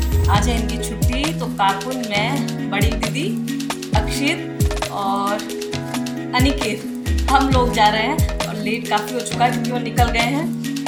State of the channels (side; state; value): both; identical; correlation 1.00